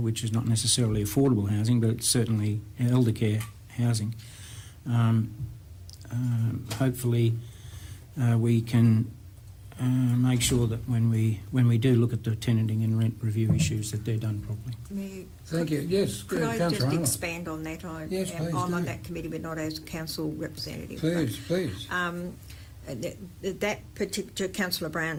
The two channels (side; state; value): both; identical; correlation 1.00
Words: which is not necessarily affordable housing, but it's certainly elder care housing. Hopefully we can make sure that when we do look at the tenanting and rent review issues, that they're done properly. Thank you. Yes, Could I just Councillor Arnold. expand on that? Yes, please I'm on do. that committee, but not as council representative. Please. That particular Councillor